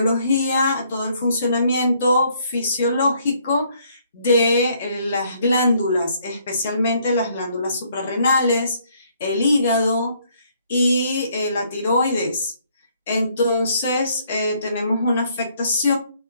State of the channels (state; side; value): inverted; both; correlation -0.67